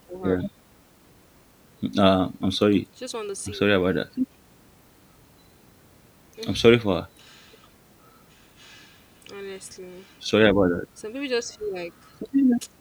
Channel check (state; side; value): identical; both; correlation 1.00